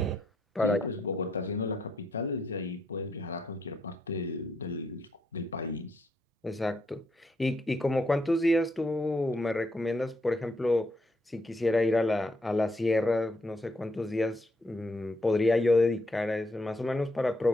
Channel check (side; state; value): both; normal; correlation 0.77